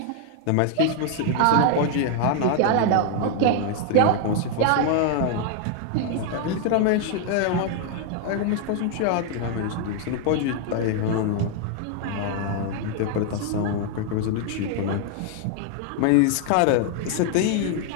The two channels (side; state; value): both; different; correlation 0.00